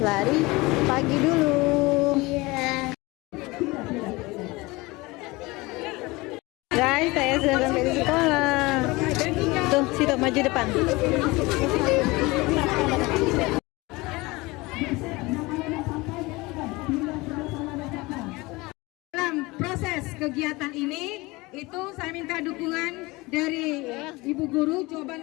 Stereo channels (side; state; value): right; quieter; 22.7 dB